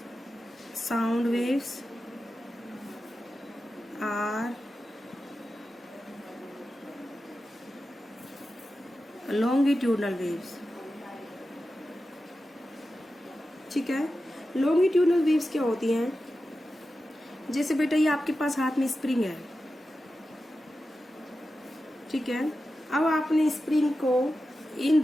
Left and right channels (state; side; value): normal; both; correlation 0.92